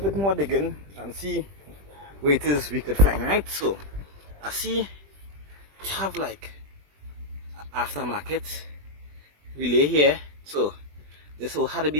more digging and see where it is we could find, right? So I see we have like aftermarket relay here. So this will have to be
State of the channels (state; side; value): late; left; 20 ms